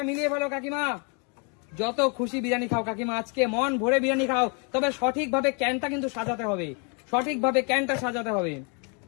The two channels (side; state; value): right; quieter; 36.0 dB